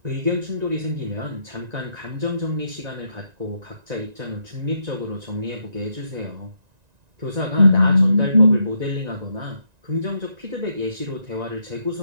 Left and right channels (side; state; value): left; late; 1.9 ms